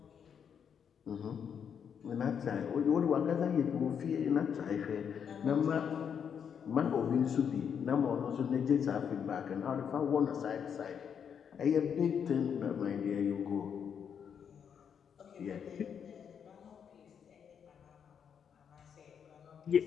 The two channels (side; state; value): right; quieter; 7.6 dB